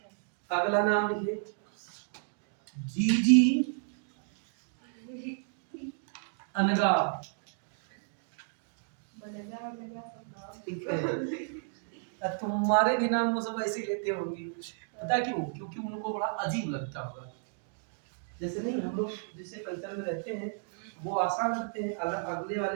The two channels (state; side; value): silent; left; 56 dB below the other